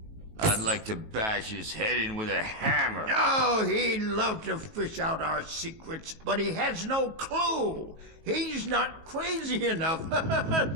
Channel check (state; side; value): late; left; 19 ms